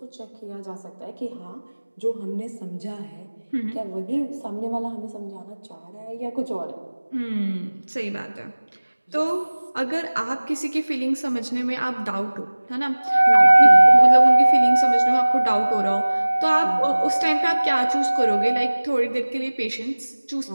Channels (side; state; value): both; inverted; correlation -1.00